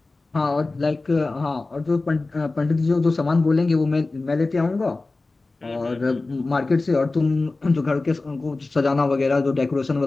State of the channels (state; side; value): quieter; right; 3.4 dB